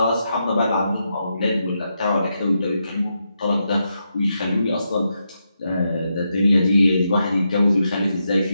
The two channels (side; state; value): both; inverted; correlation -0.84